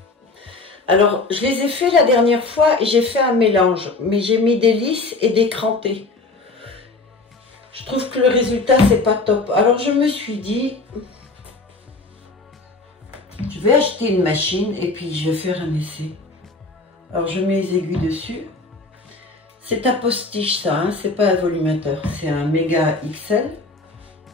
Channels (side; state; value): right; quieter; 3.4 dB